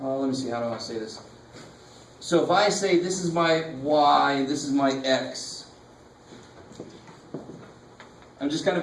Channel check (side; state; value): both; identical; correlation 1.00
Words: see, how do I say this? So if I say this is my y, this is my x, I'm just kind